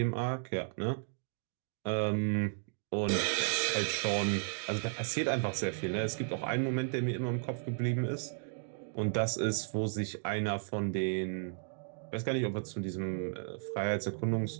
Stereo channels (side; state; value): left; silent; digital silence